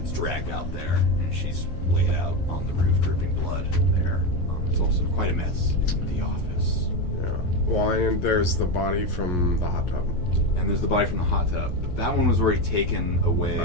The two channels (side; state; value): right; late; 11 ms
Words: dragged out there, and she's laid out on the roof, dripping blood there. It's also quite a mess in the office. Yeah. Well, and there's the body from the hot tub. And there's the body from the hot tub. That one was already taken